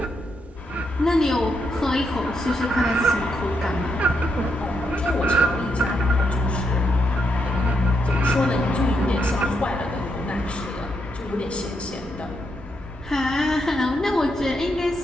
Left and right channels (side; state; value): both; normal; correlation 0.80